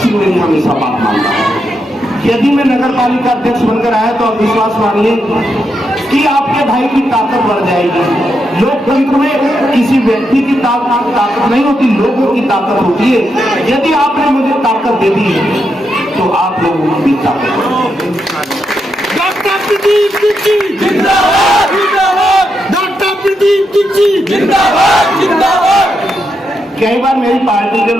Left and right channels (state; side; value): normal; both; correlation 0.83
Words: में भी हमेशा बात मानता हूं। यदि मैं नगर पालिका अध्यक्ष बनकर आया तो आप विश्वास मानिए कि आपके भाई की ताकत बढ़ जाएगी। लोकतंत्र में किसी व्यक्ति की ताकत नहीं होती, लोगों की ताकत होती है। यदि आपने मुझे ताकत दे दी तो आप लोगों की भी ताकत। डॉक्टर प्रदीप तिच्ची जिंदाबाद जिंदाबाद, डॉक्टर प्रदीप तिच्ची जिंदाबाद जिंदाबाद। कई बार मेरी पार्टी के